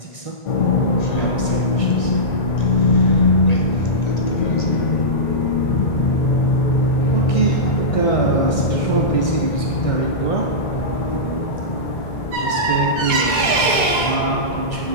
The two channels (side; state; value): right; late; 1.4 ms